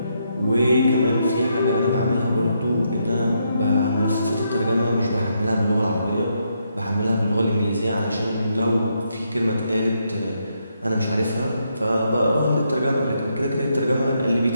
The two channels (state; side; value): inverted; both; correlation -0.78